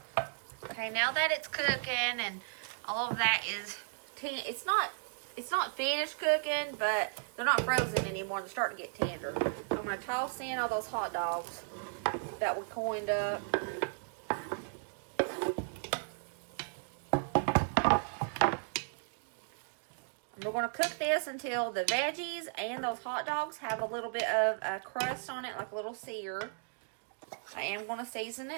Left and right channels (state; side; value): silent; left; digital silence